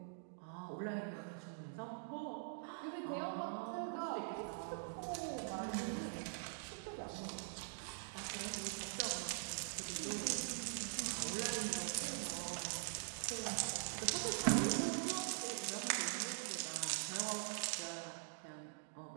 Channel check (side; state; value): left; silent; digital silence